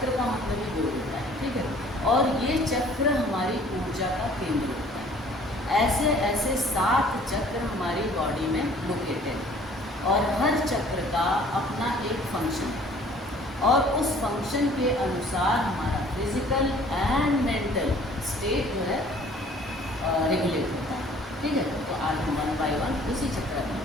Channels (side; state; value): both; normal; correlation 0.54